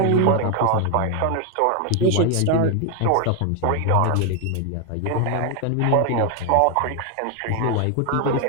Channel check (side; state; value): both; different; correlation 0.01